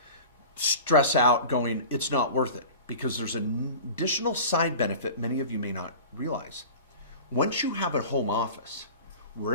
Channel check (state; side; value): inverted; both; correlation -0.36